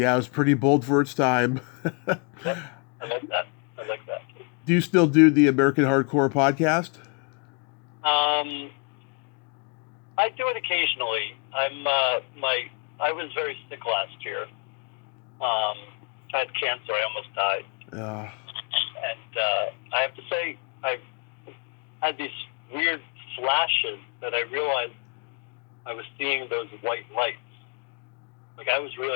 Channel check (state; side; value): quieter; right; 36.7 dB